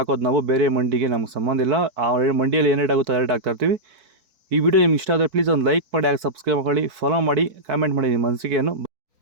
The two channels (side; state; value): left; late; 4.6 ms